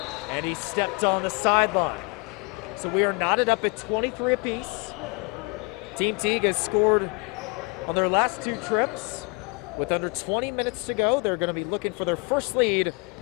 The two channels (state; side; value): quieter; right; 29.6 dB